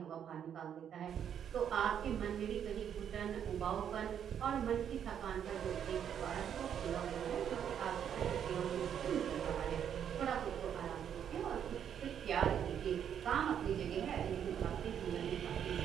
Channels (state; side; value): quieter; left; 8.8 dB